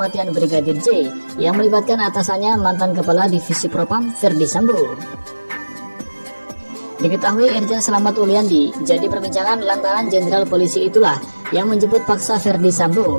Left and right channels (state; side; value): inverted; both; correlation -1.00